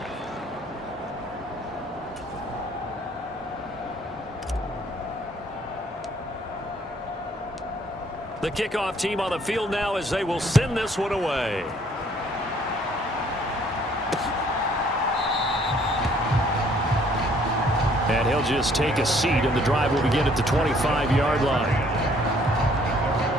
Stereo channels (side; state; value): both; normal; correlation 0.61